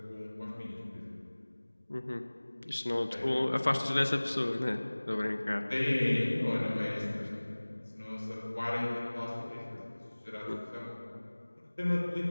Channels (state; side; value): inverted; both; correlation -1.00